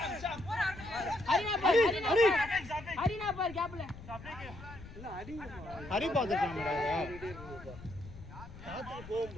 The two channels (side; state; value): left; noise; rumble, 15 dB below the sound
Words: பார் கேப்ல இல்ல ஹரி பாத்துட்டாங்கடா. காத்துக்கு